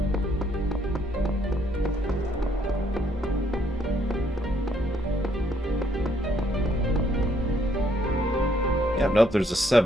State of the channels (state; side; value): normal; both; correlation 0.69